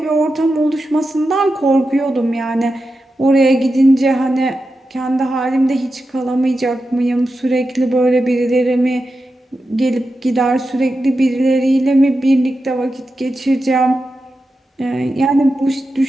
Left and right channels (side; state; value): both; normal; correlation 0.90